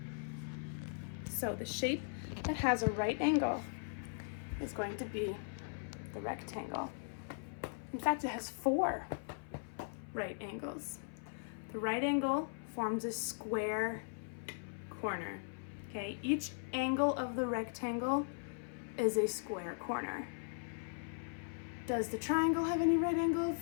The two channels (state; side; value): silent; right; 52 dB below the other